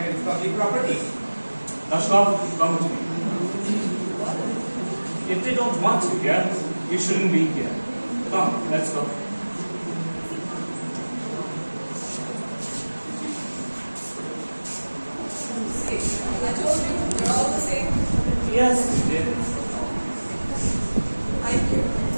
It's public property. Lashkov, come with me. If they don't want you here, you shouldn't be here. Come, let's go. See, I told you, we're all the same. Yes, you did. Thank you.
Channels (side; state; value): both; inverted; correlation -1.00